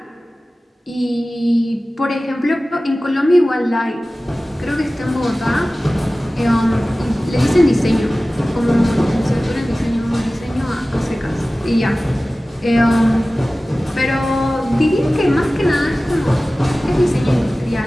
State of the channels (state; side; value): normal; both; correlation 0.97